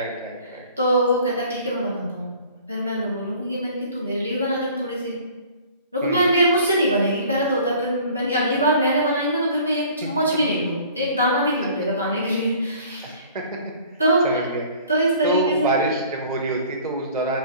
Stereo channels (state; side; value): inverted; both; correlation -0.50